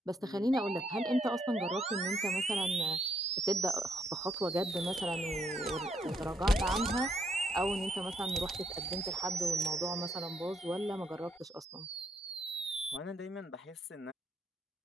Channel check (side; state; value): both; normal; correlation 0.74